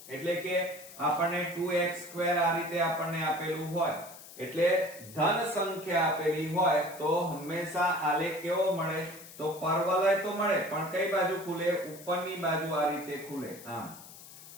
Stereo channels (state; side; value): noise; left; hiss, 17 dB below the sound